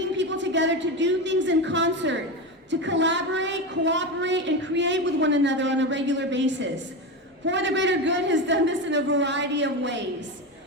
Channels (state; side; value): normal; both; correlation 0.19